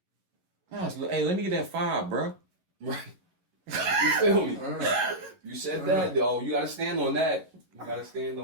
Hey, let me get that 5, bro. Right. You feel me? You said that, though. You gotta stand on that. You gotta stand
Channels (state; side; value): late; left; 11 ms